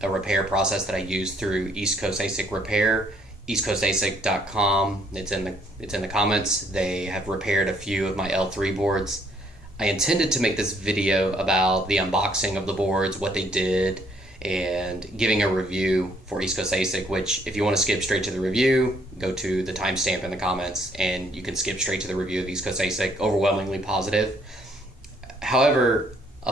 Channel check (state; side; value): normal; both; correlation 0.67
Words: a repair process that I use through East Coast ASIC Repair, EastCoastASIC.com. It's in the comments. They have repaired a few of my L3 boards. I intended to make this video about the unboxing of the boards, what they did, and giving a review for East Coast ASIC, which if you want to skip straight to the review, go to the timestamp in the comments and you can skip straight to the review of East Coast ASIC. Overwhelmingly positive. However,